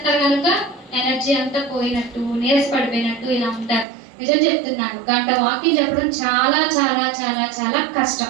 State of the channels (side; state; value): left; drops out; at 3.9 s